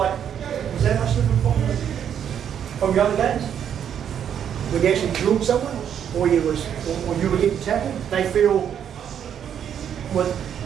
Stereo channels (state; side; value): quieter; left; 8.9 dB